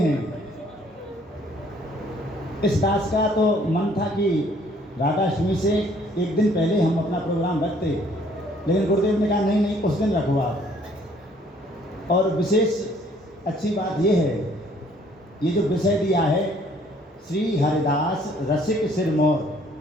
इस दास का तो मन था कि राधाष्टमी से एक दिन पहले हम अपना प्रोग्राम रखते, लेकिन गुरुदेव ने कहा नहीं नहीं, उस दिन रखो आप। और विशेष अच्छी बात ये है, ये जो विषय दिया है श्री हरिदास रसिक सिरमौर,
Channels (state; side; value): normal; both; correlation 0.61